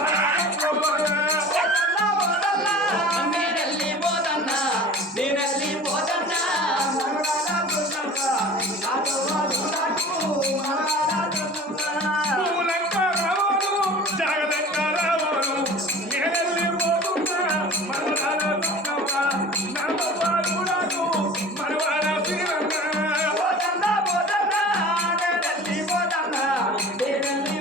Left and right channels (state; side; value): normal; both; correlation 0.40